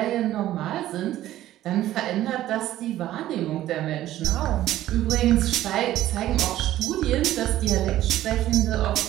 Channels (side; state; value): left; quieter; 13.9 dB